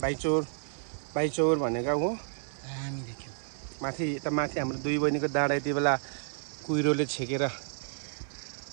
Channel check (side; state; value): left; silent; 57 dB below the other